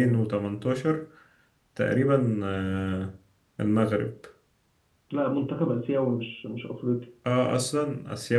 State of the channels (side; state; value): both; identical; correlation 1.00